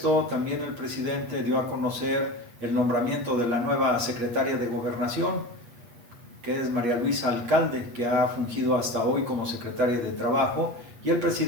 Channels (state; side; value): late; left; 8.4 ms